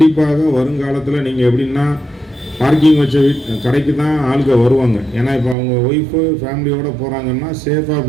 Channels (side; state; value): left; drops out; at 5.6 s